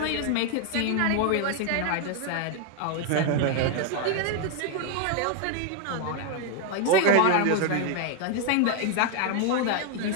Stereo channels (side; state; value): both; different; correlation 0.00